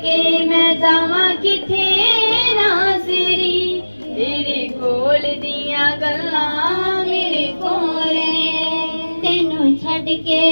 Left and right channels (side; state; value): both; inverted; correlation -1.00